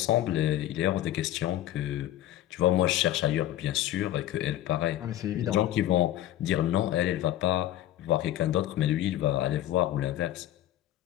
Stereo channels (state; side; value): quieter; right; 13.5 dB